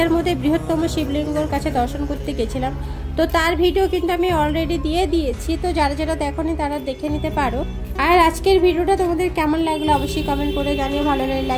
মধ্যে বৃহত্তম শিবলিঙ্গর কাছে দর্শন করতে গেছিলাম। তো তার ভিডিও কিন্তু আমি অলরেডি দিয়ে দিয়েছি, তো যারা যারা দেখোনি তারা দেখে নিতে পারো। আর আজকের ভিডিওটা তোমাদের কেমন লাগলো অবশ্যই কমেন্ট করে জানিও, ভালো লাগলে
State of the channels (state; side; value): identical; both; correlation 1.00